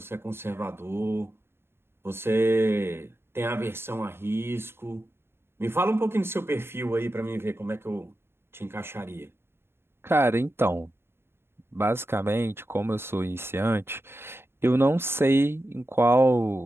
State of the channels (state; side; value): late; left; 0.11 ms